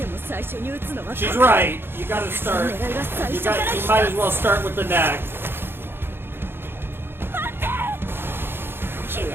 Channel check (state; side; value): late; left; 0.11 ms